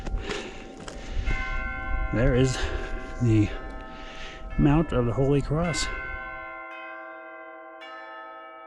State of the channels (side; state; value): both; identical; correlation 1.00